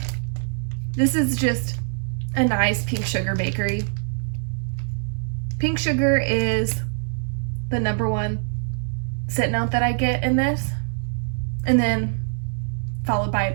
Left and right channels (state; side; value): silent; left; digital silence